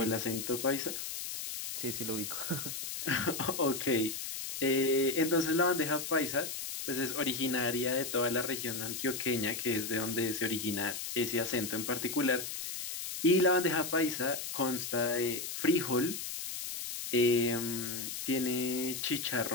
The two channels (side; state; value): left; noise; hiss, 6 dB below the sound